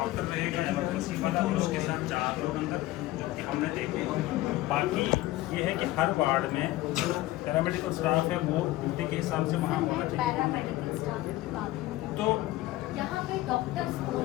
रहेगा इमरजेंसी वाला और उसके साथ 4 लोग अंदर, जो कि हमने देखे। बाकी ये है कि हर वार्ड में पैरामेडिकल स्टाफ है, वो ड्यूटी के हिसाब से वहाँ होना चाहिए। पैरामेडिकल स्टाफ की बात है। तो यहाँ पे डॉक्टर्स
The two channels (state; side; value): quieter; right; 17.0 dB